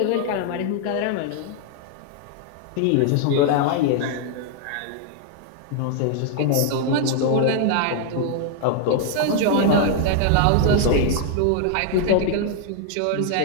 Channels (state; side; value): different; both; correlation 0.00